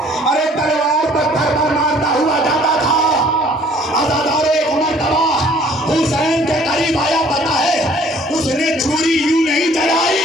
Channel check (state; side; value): normal; both; correlation 0.57